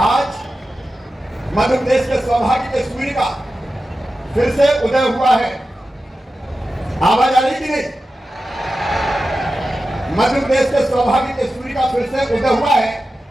आज मध्य प्रदेश के सौभाग्य के सूर्य का फिर से उदय हुआ है। आवाज आ रही कि नहीं? मध्य प्रदेश के सौभाग्य के सूर्य का फिर से उदय हुआ है।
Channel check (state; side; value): normal; both; correlation 0.93